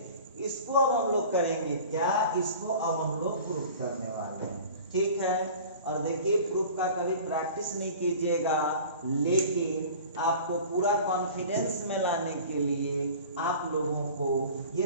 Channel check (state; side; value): inverted; both; correlation -0.42